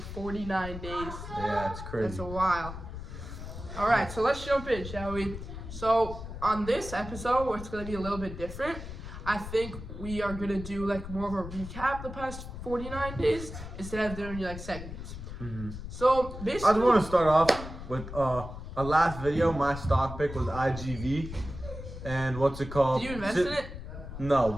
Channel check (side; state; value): left; noise; rumble, 10 dB below the sound